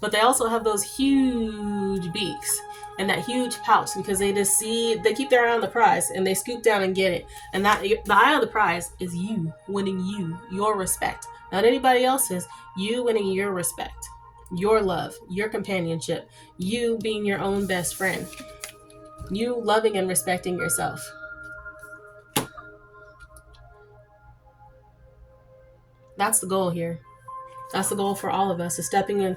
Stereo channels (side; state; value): both; identical; correlation 1.00